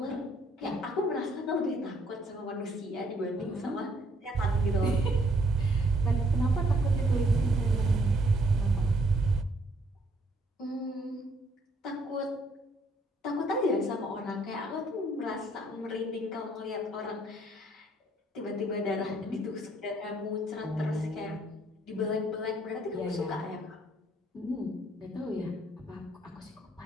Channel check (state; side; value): normal; both; correlation 0.65